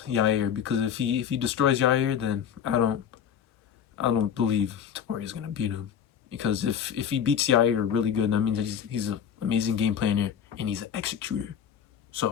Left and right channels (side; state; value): right; quieter; 8.4 dB